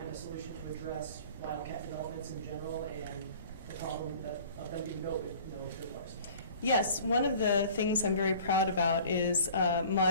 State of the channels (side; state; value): both; inverted; correlation -0.47